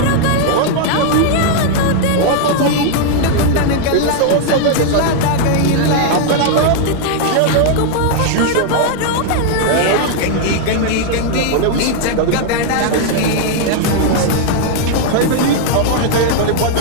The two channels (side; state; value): both; different; correlation 0.00